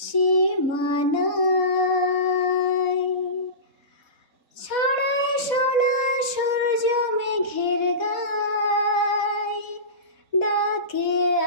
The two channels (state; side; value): late; right; 3.7 ms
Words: ছড়ায় সোনা সূর্য মেঘের গায় ডাকে